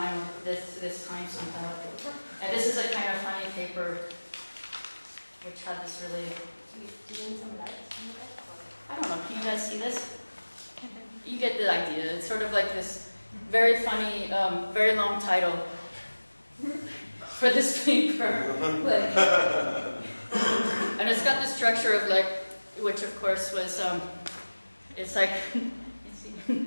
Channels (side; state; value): both; inverted; correlation -1.00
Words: this time somehow. And this is a kind of funny paper, which had this really... Do you need some light on the back? I don't know, can you guys see this? You get the idea. It's sort of like this very funny, very long title for this paper. And it's got the structure of like, which of course was, it's like,